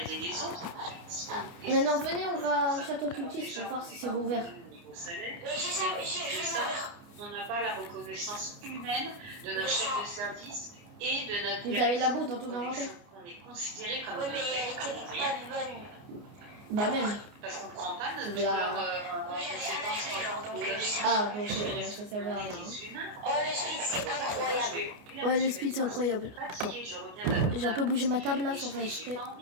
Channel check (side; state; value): left; late; 29 ms